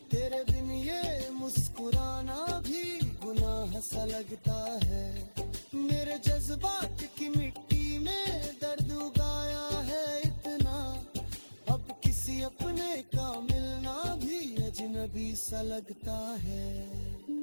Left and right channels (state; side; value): inverted; both; correlation -1.00